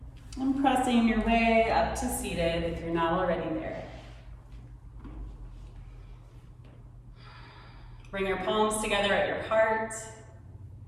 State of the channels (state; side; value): identical; both; correlation 1.00